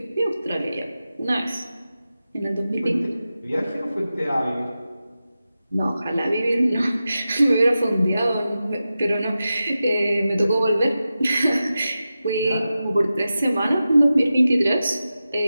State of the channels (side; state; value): both; inverted; correlation -0.93